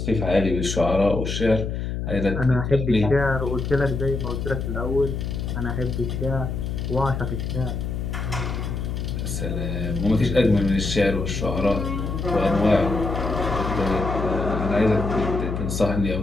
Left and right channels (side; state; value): left; noise; hum, 3 dB below the sound